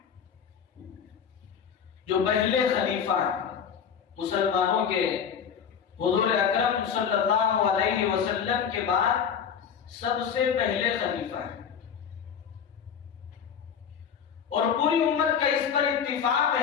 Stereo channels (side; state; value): right; quieter; 7.5 dB